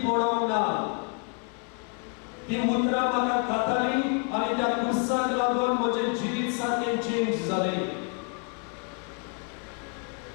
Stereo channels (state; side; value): quieter; right; 36.9 dB